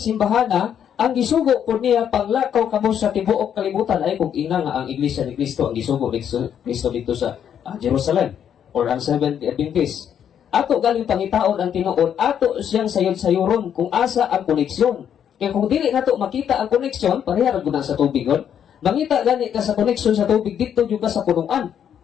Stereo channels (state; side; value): quieter; right; 8.9 dB